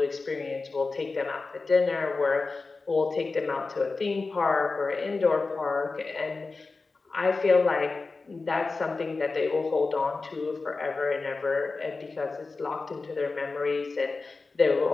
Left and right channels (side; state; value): right; quieter; 3.9 dB